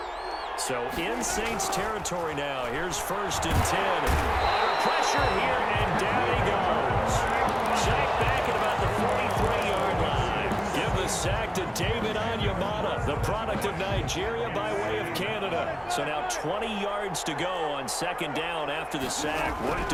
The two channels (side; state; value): both; identical; correlation 1.00